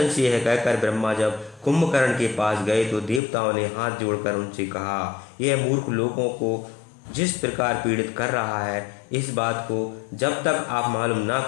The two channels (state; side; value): drops out; right; at 3.2 s